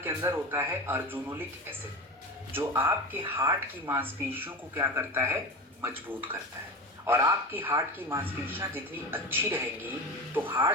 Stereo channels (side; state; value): both; normal; correlation 0.26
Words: अंदर होता है अर्जुनोलिक एसिड, जो आपके हार्ट की मांसपेशियों को क्या करता है, मजबूत करता है। और आपकी हार्ट की मांसपेशियां जितनी अच्छी रहेंगी तो